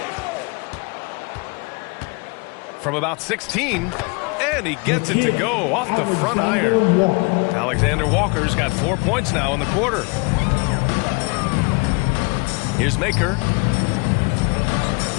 From about 16. And he gets it to go off the front iron. Alexander Walker's got 4 points now in the quarter. Here's Makur.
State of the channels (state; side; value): quieter; right; 29.8 dB